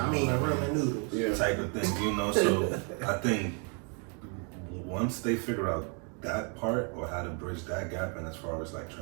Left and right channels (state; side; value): quieter; left; 37.8 dB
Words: I mean, ramen noodles. Type of thing, you know. So I think once they figure out that part or how to bridge that gap, and as far as like